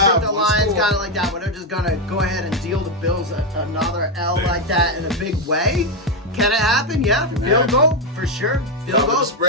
the Lions got it like that, but they're just going to go ahead and deal the Bills another L like that in a big way. Can it happen? Yeah. Field goal, for sure. Field goal,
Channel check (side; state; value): both; normal; correlation 0.06